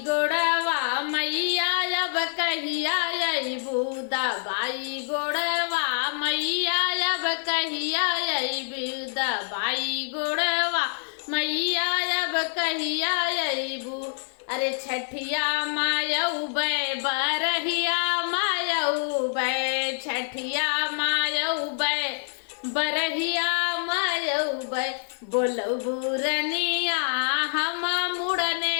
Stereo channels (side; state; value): right; silent; 61 dB below the other